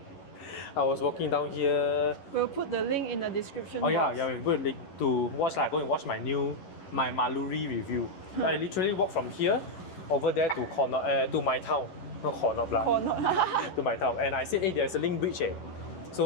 I was walking down here. We'll put the link in the description box. box. Yeah, we'll put a link to watch go and watch my Maluri review. I literally walked from here over there to my town. Not corner to my town. And I said, hey, there's a link bridge here.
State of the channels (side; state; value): right; late; 11 ms